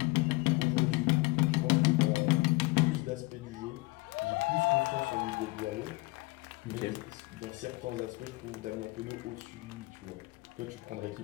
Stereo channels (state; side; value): quieter; right; 23.1 dB